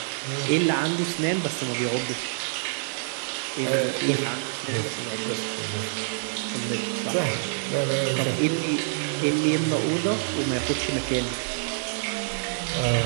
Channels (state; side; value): silent; left; digital silence